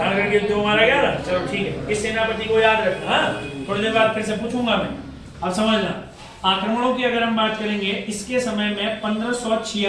के युद्ध में मारा गया था। चलो ठीक है, इस सेनापति को याद रखना, थोड़ी देर बाद फिर से पूछूंगा मैं। अब समझना आक्रमणों की अगर हम बात करेंगे, इसके समय में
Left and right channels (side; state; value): both; identical; correlation 1.00